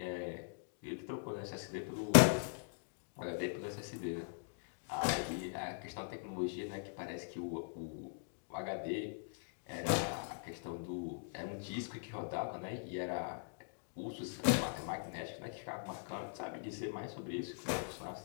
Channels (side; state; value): right; silent; digital silence